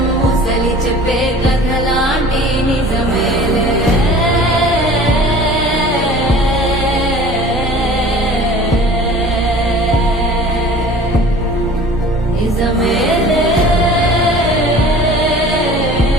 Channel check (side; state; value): both; normal; correlation 0.45